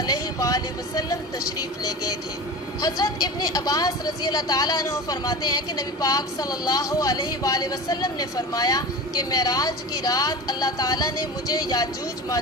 وآلہ وسلم تشریف لے گئے تھے۔ حضرت ابن عباس رضی اللہ تعالیٰ عنہ فرماتے ہیں کہ نبی پاک صلی اللہ علیہ وآلہ وسلم نے فرمایا کہ معراج کی رات اللہ تعالیٰ نے مجھے یاجوج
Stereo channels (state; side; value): normal; both; correlation 0.31